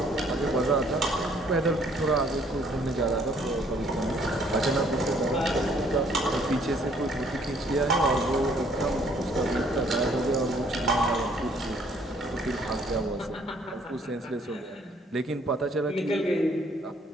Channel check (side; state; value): both; normal; correlation 0.62